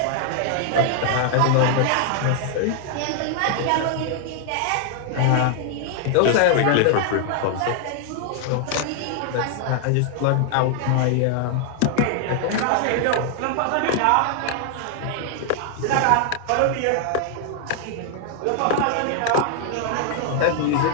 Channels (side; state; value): both; different; correlation 0.00